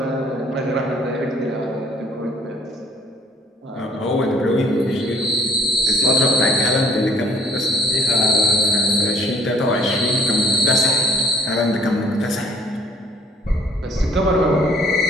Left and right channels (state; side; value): normal; both; correlation 0.58